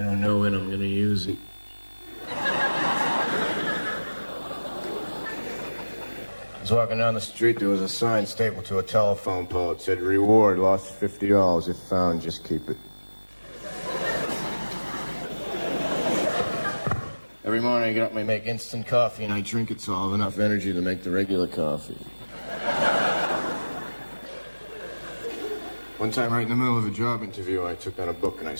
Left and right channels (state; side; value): inverted; both; correlation -1.00